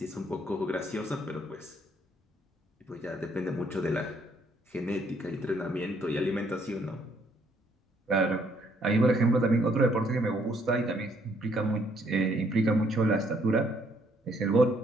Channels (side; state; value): both; normal; correlation 0.68